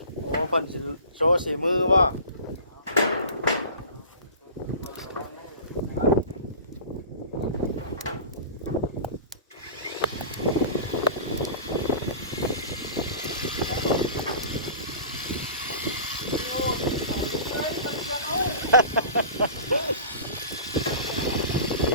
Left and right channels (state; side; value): inverted; both; correlation -0.39